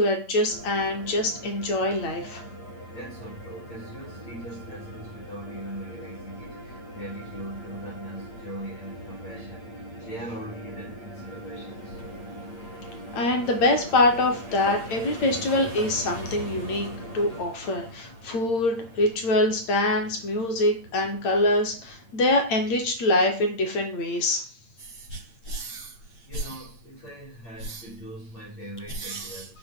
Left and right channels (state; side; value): late; right; 8.7 ms